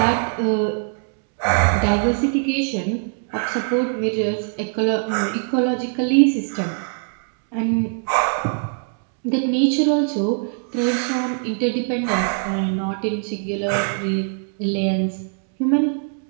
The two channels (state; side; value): silent; left; 56 dB below the other